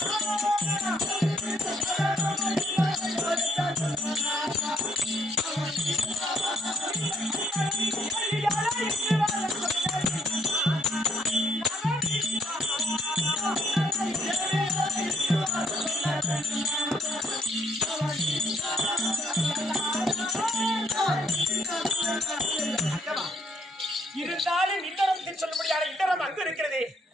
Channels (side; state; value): both; normal; correlation 0.69